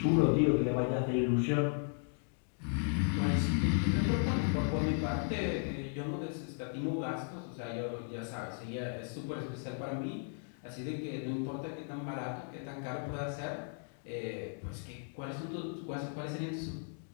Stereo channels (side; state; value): right; silent; 54 dB below the other